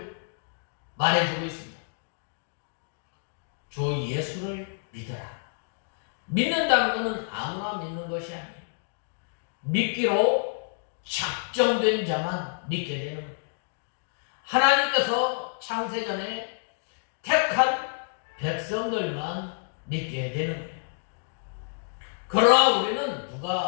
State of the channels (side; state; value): right; silent; digital silence